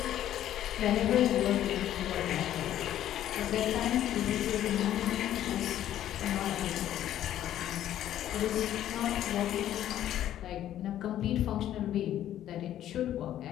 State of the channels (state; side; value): quieter; right; 11.9 dB